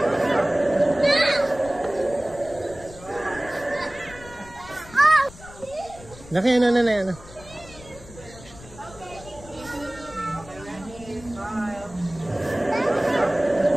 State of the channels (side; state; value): left; noise; rumble, 19 dB below the sound